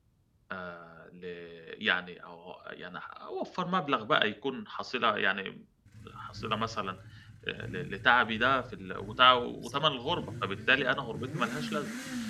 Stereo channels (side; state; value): both; identical; correlation 1.00